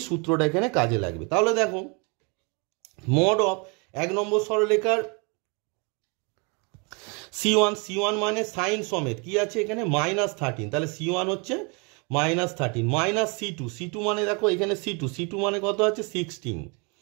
সূত্রটা এখানে কাজে লাগবে। তাহলে দেখো mod of 1 নম্বর সরলরেখার C1 মানে সাইন সমেত কি আছে এখানে -13, তাহলে C1 হচ্ছে -13 মাইনাস C2 মানে দেখো এখানে C2 মানে কত আছে 16,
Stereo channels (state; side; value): quieter; left; 32.3 dB